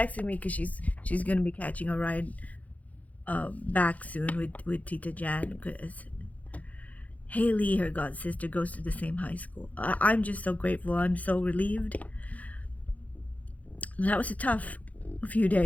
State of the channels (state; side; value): late; right; 0.072 ms